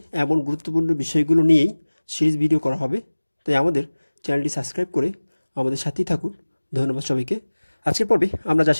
এমন গুরুত্বপূর্ণ বিষয়গুলো নিয়েই সিরিজ ভিডিও করা হবে, তাই আমাদের চ্যানেলটি সাবস্ক্রাইব করে আমাদের সাথেই থাকুন। ধন্যবাদ সবাইকে। আজকের পর্বে আমরা যা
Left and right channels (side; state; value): both; inverted; correlation -1.00